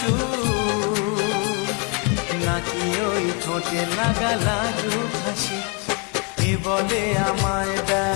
নাকি ওই ঠোঁটে লাগা লাজুক হাসি এ বলে আমায়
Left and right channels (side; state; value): right; quieter; 34.0 dB